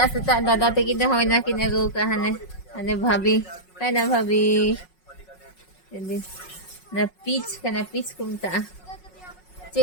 सीता दादा ते किने होय ना किने गो कहने अने भाभी कहना भाभी ना पीच कुमता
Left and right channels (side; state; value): right; late; 5.4 ms